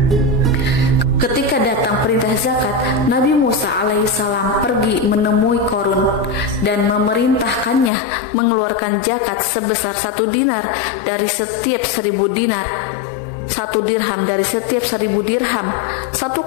Ketika datang perintah zakat, Nabi Musa alaihissalam pergi menemui Korun dan memerintahkannya mengeluarkan zakat sebesar 1 dinar dari setiap 1000 dinar, 1 dirham dari setiap 1000 dirham, 1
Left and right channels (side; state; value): right; drops out; at 7.9 s